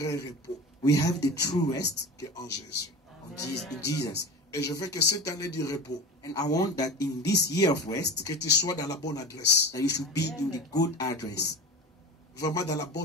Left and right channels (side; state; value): both; normal; correlation 0.32